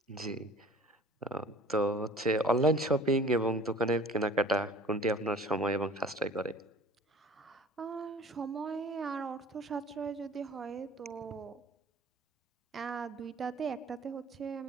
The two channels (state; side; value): normal; both; correlation 0.46